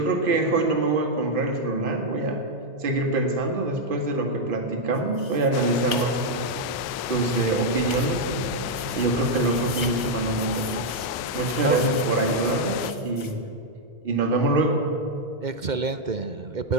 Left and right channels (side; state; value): left; late; 1.3 ms